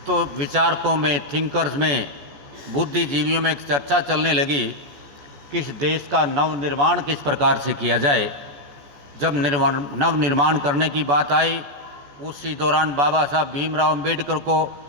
तो विचारकों में, थिंकर्स में, बुद्धिजीवियों में एक चर्चा चलने लगी कि इस देश का नवनिर्माण किस प्रकार से किया जाए। जब नवनिर्माण करने की बात आई, उसी दौरान बाबा साहब भीमराव अंबेडकर को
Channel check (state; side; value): late; left; 14 ms